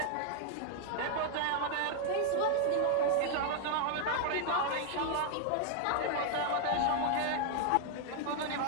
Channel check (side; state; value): both; different; correlation 0.00